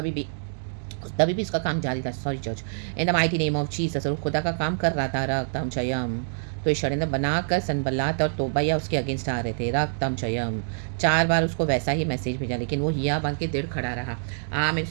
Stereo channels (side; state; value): left; silent; digital silence